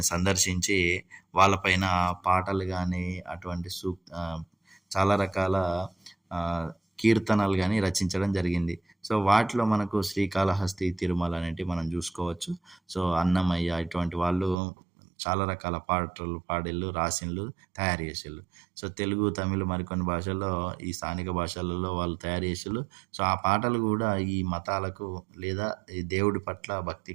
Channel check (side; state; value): left; drops out; at 14.6 s